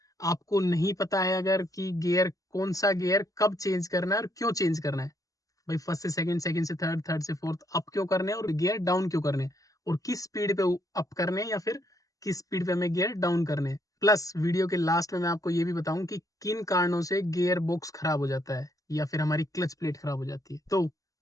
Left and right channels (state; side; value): late; right; 0.17 ms